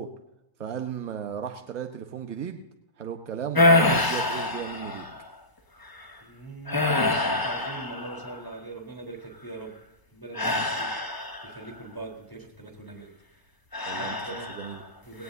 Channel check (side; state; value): right; late; 1.0 ms